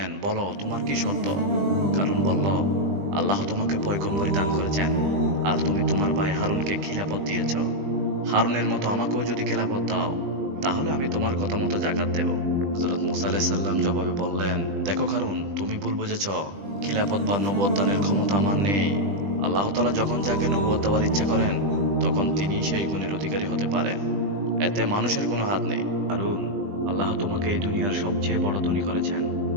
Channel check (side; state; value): left; late; 20 ms